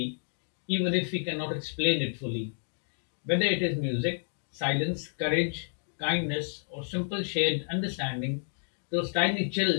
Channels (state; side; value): silent; right; digital silence